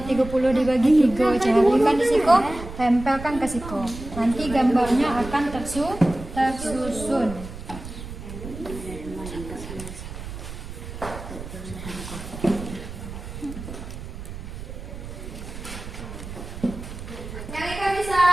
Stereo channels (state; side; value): noise; right; rumble, 11 dB below the sound